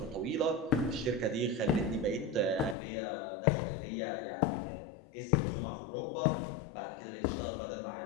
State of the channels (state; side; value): drops out; right; at 2.8 s